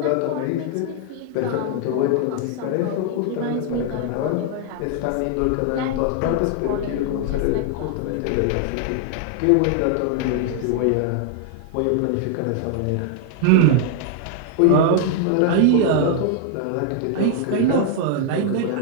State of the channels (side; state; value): both; different; correlation 0.00